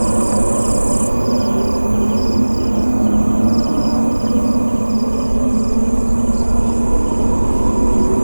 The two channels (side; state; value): both; inverted; correlation -1.00